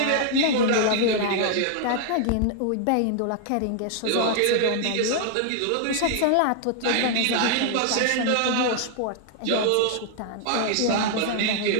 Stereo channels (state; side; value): different; both; correlation 0.00